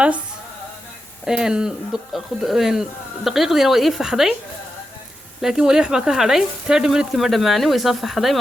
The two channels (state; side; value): normal; both; correlation 0.88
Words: دقيقة دينا وإيه فحدي لكن ولي حبا كهدي 30 minute كما دماني ويصف حدي